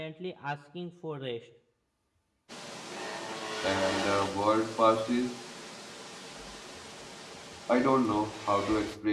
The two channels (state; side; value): identical; both; correlation 1.00